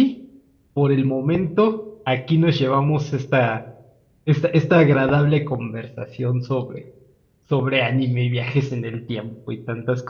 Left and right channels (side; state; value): both; identical; correlation 1.00